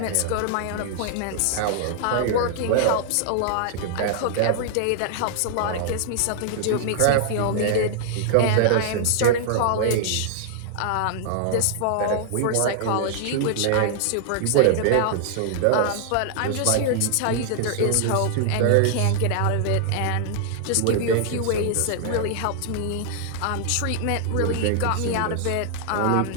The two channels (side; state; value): both; different; correlation -0.01